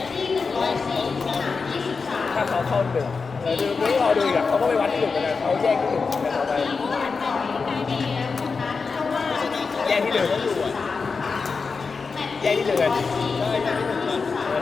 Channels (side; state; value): right; quieter; 4.8 dB